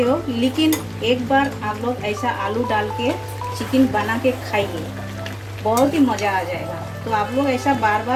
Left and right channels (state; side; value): identical; both; correlation 1.00